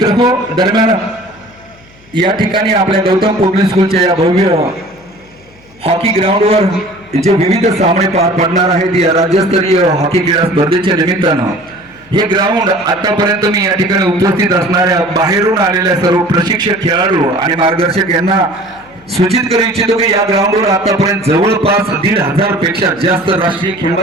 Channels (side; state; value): left; noise; hum, 27 dB below the sound